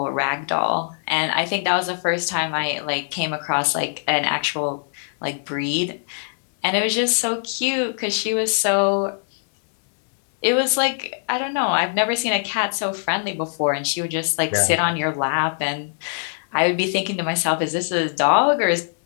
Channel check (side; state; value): right; silent; digital silence